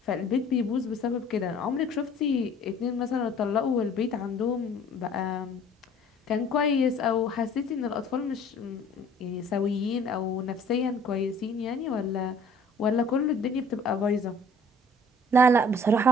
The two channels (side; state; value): both; normal; correlation 0.53